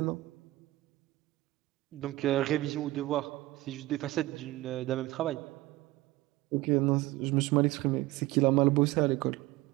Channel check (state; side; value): quieter; left; 18.4 dB